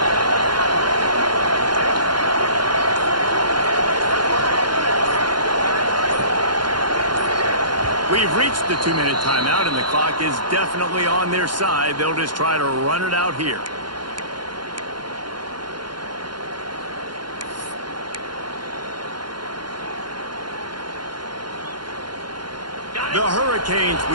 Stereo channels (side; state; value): left; late; 0.71 ms